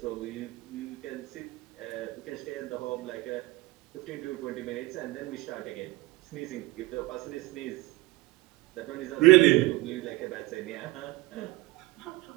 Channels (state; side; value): quieter; left; 20.7 dB